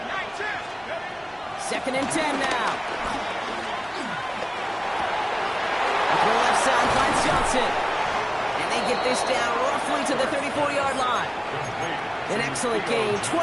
Second and 10 now. Up the left side finds Johnson. And they get this down roughly to the 34-yard line. An excellent gain,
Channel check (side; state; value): both; identical; correlation 1.00